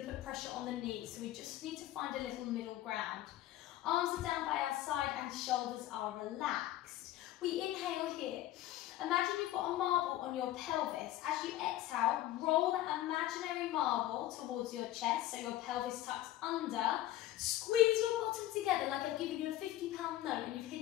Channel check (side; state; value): right; quieter; 14.3 dB